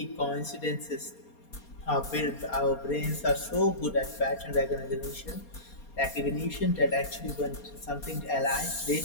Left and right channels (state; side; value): late; right; 4.3 ms